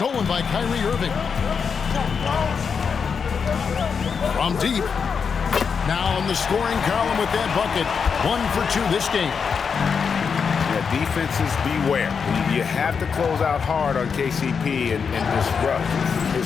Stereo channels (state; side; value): quieter; right; 6.1 dB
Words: by Kyrie Irving. From deep. Now in the scoring column with that bucket. 1 for 2 this game. Yeah, defenses beware. You have to close out hard on KCP and disrupt